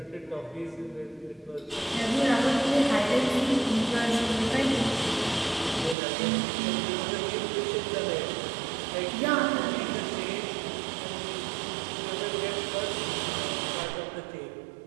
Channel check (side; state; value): left; drops out; at 6.0 s